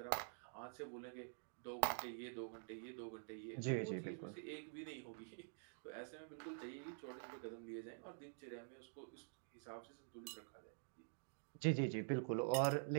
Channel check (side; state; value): left; silent; digital silence